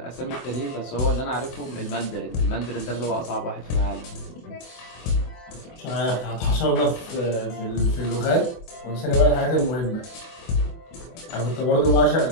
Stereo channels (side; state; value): right; late; 24 ms